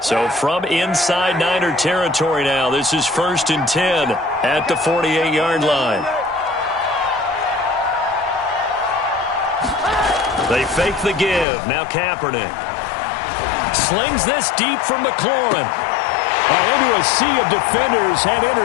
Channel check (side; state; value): right; drops out; at 11.5 s